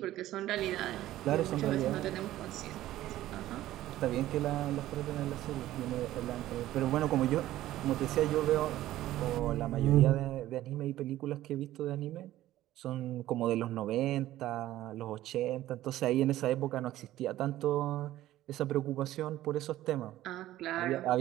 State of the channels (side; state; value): left; quieter; 14.6 dB